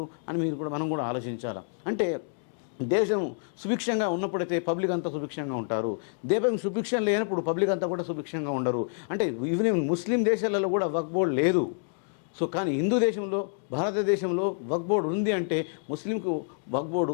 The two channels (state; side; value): silent; right; digital silence